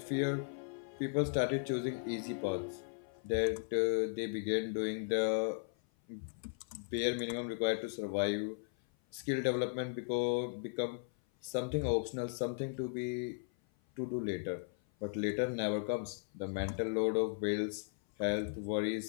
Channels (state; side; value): silent; right; 53 dB below the other